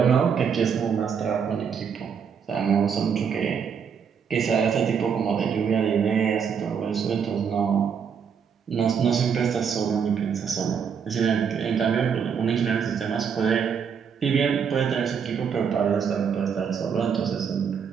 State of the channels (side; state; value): left; quieter; 6.9 dB